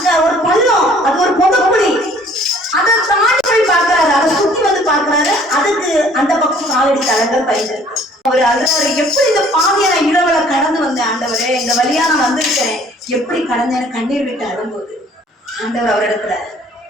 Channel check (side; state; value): both; normal; correlation 0.56